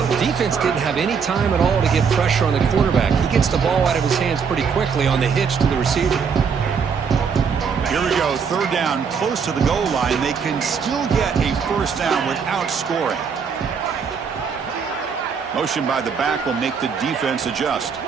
the defense didn't have any time at all to get pressure on the quarterback. He gets the ball out of his hands pretty quickly on the hitch to the receiver. Here we go, third down, close to the goal line. They can still get a first down without scoring. Motion by the back will make the defense adjust.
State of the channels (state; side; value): quieter; left; 6.3 dB